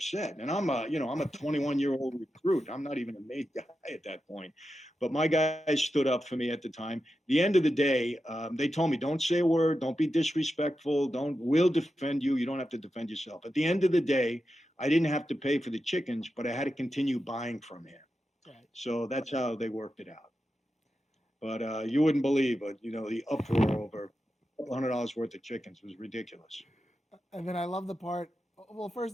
And I'm a 21-year-old recruit. I'm not even a maid guy at that point. But my guys stood up for me at the time. The end of the day, they told me, "Don't say a word. Don't be disrespectful. We'll defend you. You don't have to defend yourself." At the end of the day, I didn't have to pay for the chickens, but I had to continue buying from him. Right. So that's how they worked it out. But you wouldn't believe it. The uproar over $100 worth of chickens was ridiculous. And then I love the part. Well, first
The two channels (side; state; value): both; normal; correlation 0.90